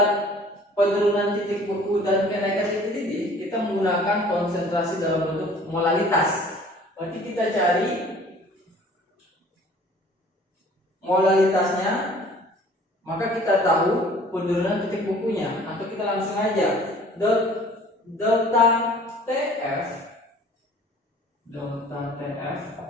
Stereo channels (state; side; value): normal; both; correlation 0.51